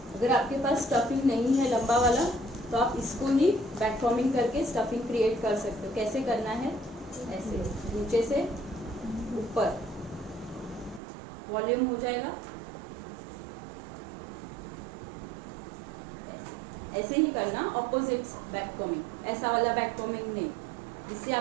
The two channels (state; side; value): drops out; left; at 11.0 s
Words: अगर आपके पास स्टफिंग नहीं है लंबा वाला तो आप इसको ही बैक फॉर्मिंग करके स्टफिंग क्रिएट कर सकते हो। कैसे करना है? ऐसे नीचे से ऊपर वॉल्यूम हो जाएगा, ऐसे ही करना। ऑपोजिट बैक कॉमिंग, ऐसा वाला बैक कॉमिंग नहीं, इससे